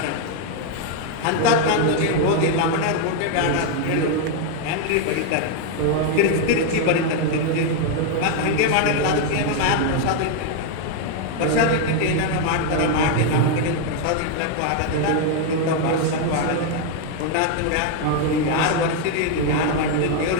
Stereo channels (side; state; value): both; different; correlation 0.01